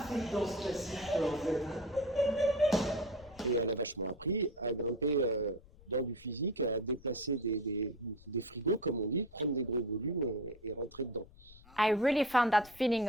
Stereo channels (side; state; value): left; noise; rumble, 22 dB below the sound